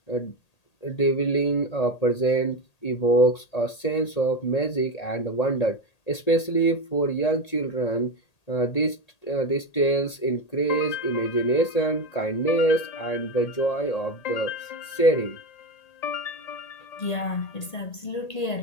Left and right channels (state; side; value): late; right; 1.8 ms